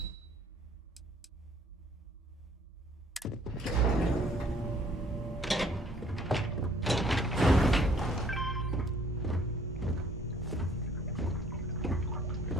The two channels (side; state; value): both; normal; correlation 0.60